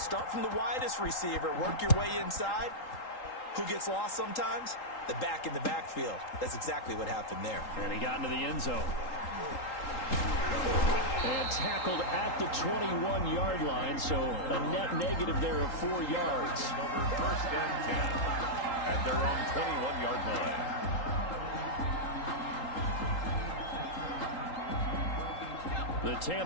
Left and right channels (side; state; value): right; late; 3.8 ms